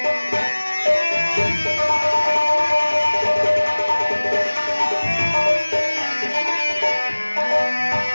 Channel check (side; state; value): both; inverted; correlation -1.00